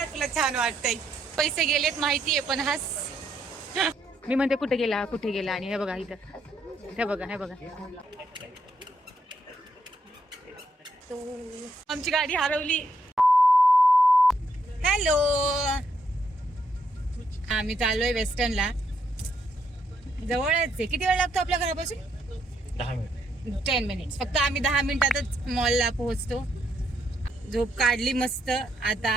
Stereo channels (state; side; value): normal; both; correlation 0.76